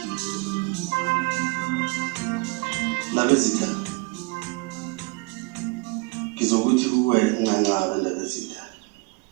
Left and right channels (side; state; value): left; quieter; 28.5 dB